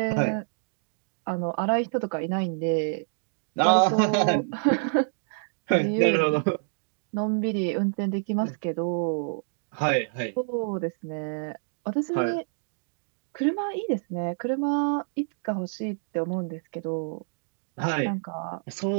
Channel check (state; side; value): silent; left; digital silence